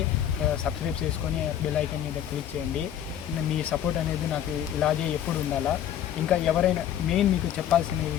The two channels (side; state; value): right; quieter; 10.3 dB